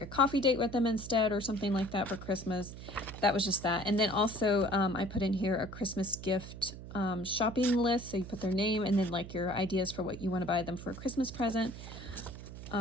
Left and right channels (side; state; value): right; noise; hum, 12 dB below the sound